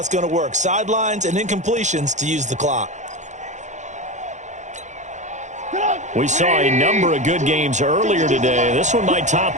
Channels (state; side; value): late; left; 0.35 ms